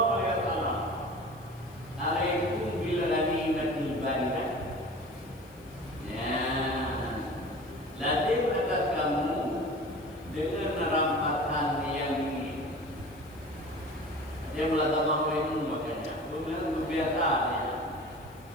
alaihi wasallam alaikum bil ghanimatil baridah. Ya. Lazim atas kamu dengan rampasan yang ini. Dia melakukan apa itu makanya. Bukan biasa ya.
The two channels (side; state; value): left; noise; hiss, 28 dB below the sound